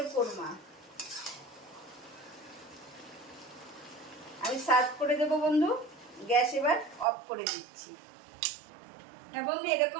কোরমা আমি সার্ভ করে দেব বন্ধু। গ্যাস এবার অফ করে দিচ্ছি। হ্যাঁ বন্ধু,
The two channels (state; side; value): drops out; left; at 7.1 s